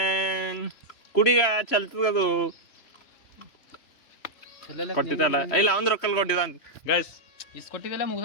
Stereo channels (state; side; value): late; right; 3.0 ms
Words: ಕುಡಿಗ ಚಲ್ತದದು ಕೊಟ್ಟಿದ್ದಲ್ಲ ಇಲ್ಲ ಅವ್ನ ರೊಕ್ಕಲ್ ಕೊಟ್ಟಿದ್ದ ಗೈಸ್ ಇಸ್ಕೊಟ್ಟಿದ್ದೆಲ್ಲ